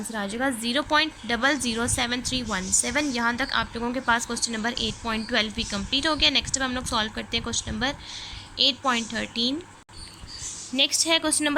आ जाएगा 0.007317। यहाँ तक आप लोगों के पास क्वेश्चन नंबर 8.12 भी कंप्लीट हो गया। नेक्स्ट अब हम लोग सॉल्व करते हैं क्वेश्चन नंबर 8.13। नेक्स्ट है क्वेश्चन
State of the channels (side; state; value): both; identical; correlation 1.00